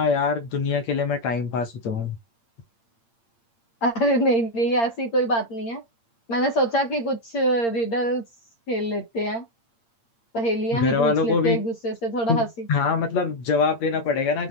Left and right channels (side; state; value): right; late; 8.7 ms